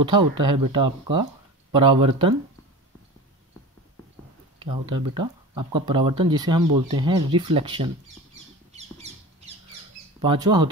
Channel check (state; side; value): normal; both; correlation 0.33